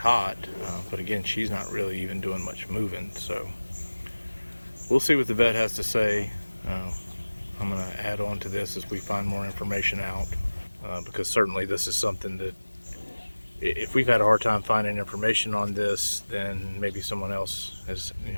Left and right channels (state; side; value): inverted; both; correlation -1.00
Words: but again, she's not really even doing much moving. So we'll see what the vet has to say. I'm going to add on to this as we find more information out, because certainly this is something that if we've had a hard time finding information on this, then maybe someone else is